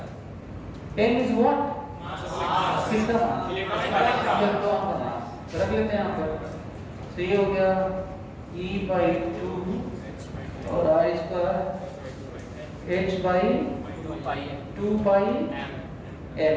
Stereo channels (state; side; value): identical; both; correlation 1.00